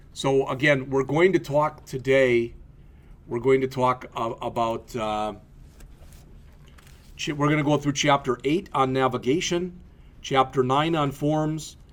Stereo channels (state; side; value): identical; both; correlation 1.00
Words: So again, we're going to talk today. We're going to talk about. We're going to go through Chapter 8 on navigation, Chapter 9 on forms,